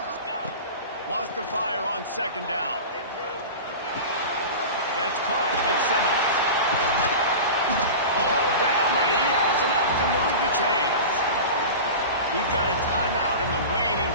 Wants to fire on 2nd down. That's caught. It's Simmons. All down, but he has enough to move the chains. We've got a timeout in the waning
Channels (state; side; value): inverted; both; correlation -0.31